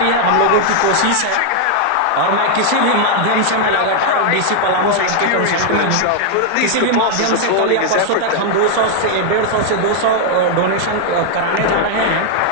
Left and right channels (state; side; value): different; both; correlation 0.00